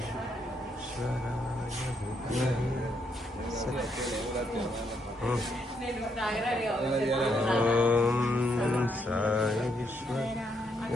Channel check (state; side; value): normal; both; correlation 0.76